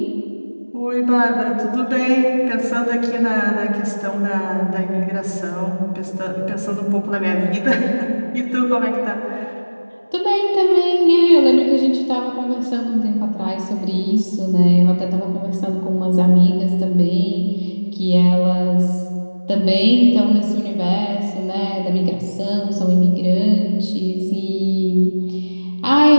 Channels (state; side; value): inverted; both; correlation -1.00